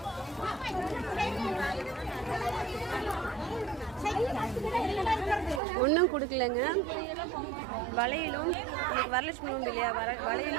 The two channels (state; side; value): drops out; left; at 5.6 s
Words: ஒன்றும் கொடுக்கலங்க. வளையலும் இன்னைக்கு வரலட்சுமி உண்டு இல்லையா,